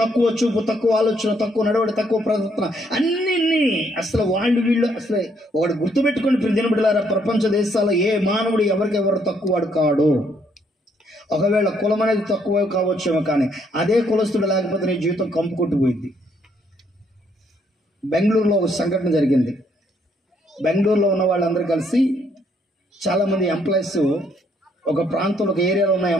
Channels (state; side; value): normal; both; correlation 0.70